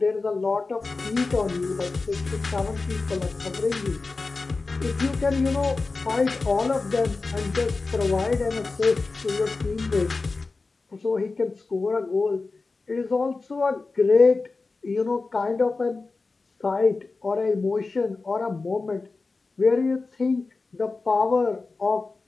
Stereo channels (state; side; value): quieter; right; 3.8 dB